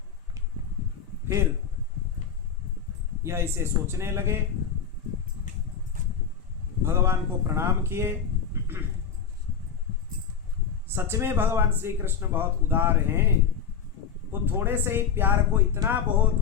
फिर यह इसे सोचने लगे, भगवान को प्रणाम किए। सच में भगवान श्री कृष्ण बहुत उदार हैं। वो थोड़े से ही प्यार को इतना बहुत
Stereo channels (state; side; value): quieter; right; 7.3 dB